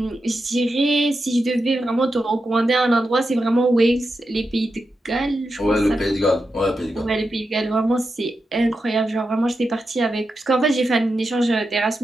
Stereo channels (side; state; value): both; normal; correlation 0.88